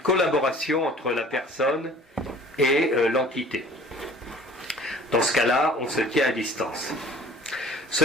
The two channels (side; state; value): both; normal; correlation 0.49